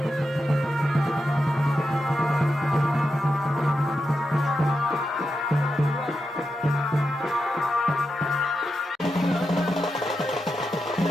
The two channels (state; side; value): normal; both; correlation 0.87